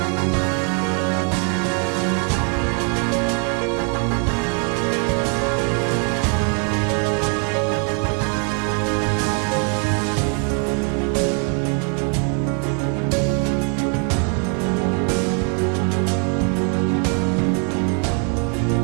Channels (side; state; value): left; quieter; 39.8 dB